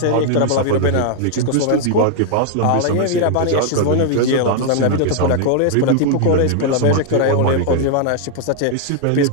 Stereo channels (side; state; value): both; different; correlation 0.00